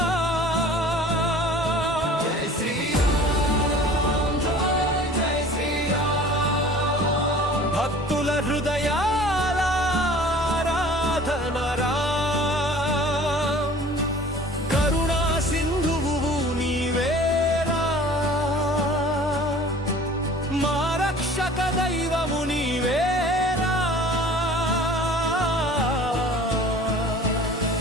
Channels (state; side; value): normal; both; correlation 0.46